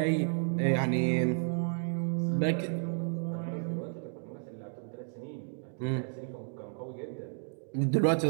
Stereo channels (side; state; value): left; silent; digital silence